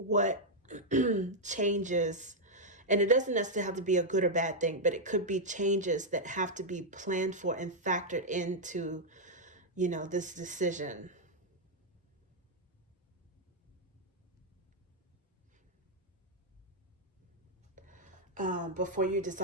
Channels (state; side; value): normal; both; correlation -0.03